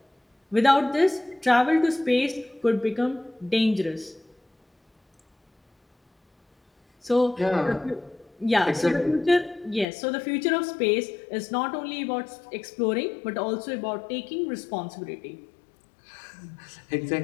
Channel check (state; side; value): drops out; right; at 9.9 s